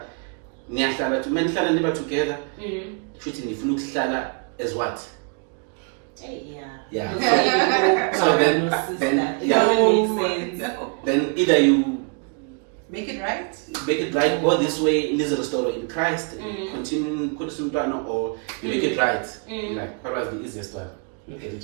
niyahlala together, shouldn't nifuna ukuhlala as what? Yeah. So then either you make it right, go this way, live the story in Christ, continue or you make it right. Like, what was the easiest one? Look at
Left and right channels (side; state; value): left; quieter; 37.5 dB